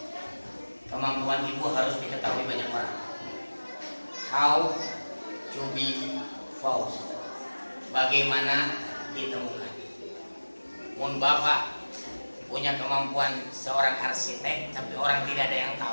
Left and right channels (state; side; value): inverted; both; correlation -1.00